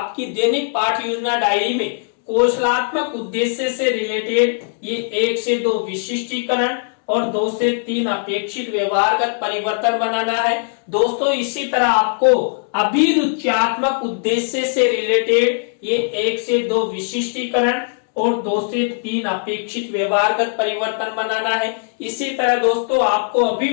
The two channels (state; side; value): silent; right; digital silence